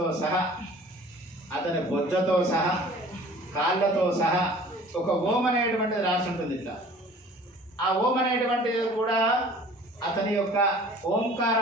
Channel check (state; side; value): normal; both; correlation 0.48